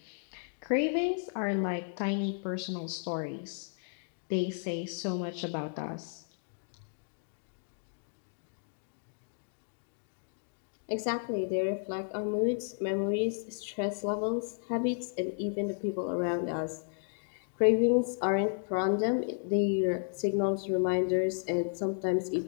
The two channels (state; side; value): silent; right; digital silence